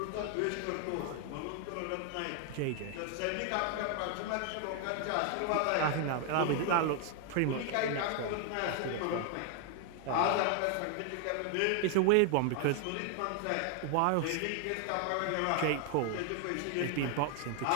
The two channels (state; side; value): different; both; correlation 0.00